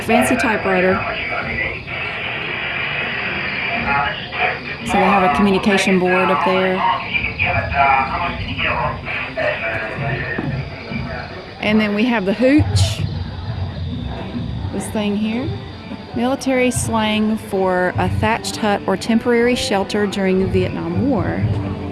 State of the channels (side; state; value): both; identical; correlation 1.00